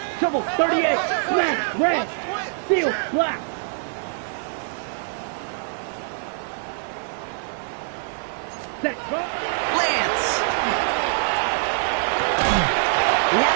shovel, 38, black, red, seal, black. Set. Lance. He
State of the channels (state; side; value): silent; left; digital silence